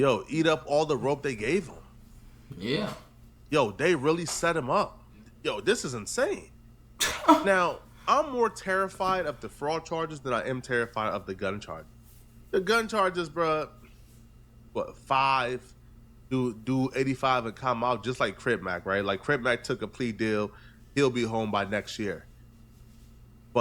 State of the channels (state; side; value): identical; both; correlation 1.00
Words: up all the rope they gave him. Yeah. They really set him up. This is insane. Now, I'm more terrified of the fraud charges than I am terrified of the gun charge. The gun charges, bruh, 5, do 85 and come out, just like Crip Mac, right? Like Crip Mac took a plea deal. He'll be home by next year.